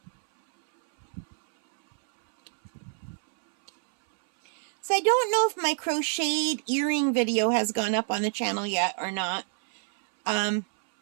So I don't know if my crocheted earring video has gone up on the channel yet or not.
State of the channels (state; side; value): silent; left; 60 dB below the other